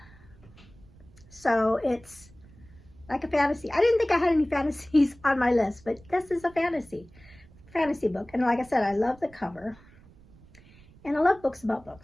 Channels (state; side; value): noise; right; rumble, 24 dB below the sound